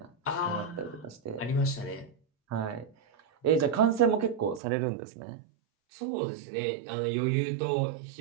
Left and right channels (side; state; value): left; drops out; at 4.6 s